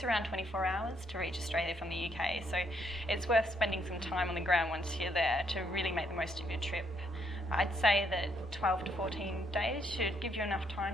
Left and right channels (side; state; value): both; normal; correlation 0.72